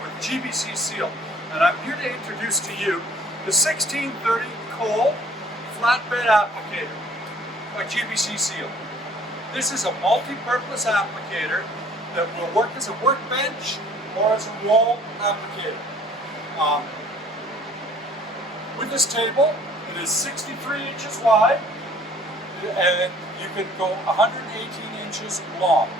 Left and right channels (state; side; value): normal; both; correlation 0.55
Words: GBC SEAL, and I'm here to introduce to you the 1630 Cole Flatbed Applicator by GBC SEAL. This is a multi-purpose applicator that will work as a workbench or as a wall applicator. With this table, it is 63 inches wide, and you can go 118 inches long